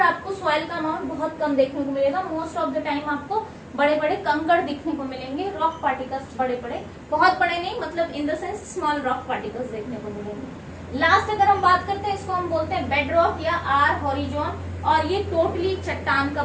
आपको सॉइल का अमाउंट बहुत कम देखने को मिलेगा. मोस्ट ऑफ द टाइम आपको बड़े बड़े कंकड़ दिखने को मिलेंगे, रॉक पार्टिकल्स बड़े बड़े, बहुत बड़े नहीं, मतलब in the sense small rock particles देखने को मिलेंगे. लास्ट अगर हम बात करते हैं, इसको हम बोलते हैं बेड रॉक या आर हॉरिजॉन, और ये टोटली चट्टान का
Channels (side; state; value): both; identical; correlation 1.00